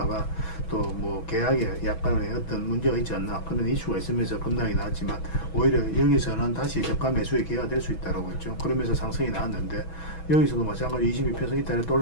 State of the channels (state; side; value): late; right; 6.2 ms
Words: 또 뭐 계약에 약간의 어떤 문제가 있지 않나 그런 이슈가 있으면서 급락이 나왔지만 오히려 여기서는 다시 저가 매수의 기회가 될 수 있다고 했죠. 그러면서 상승이 나왔는데 여기서도 마찬가지 22평선 이탈에 또